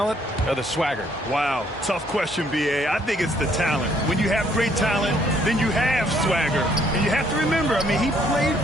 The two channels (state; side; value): normal; both; correlation 0.66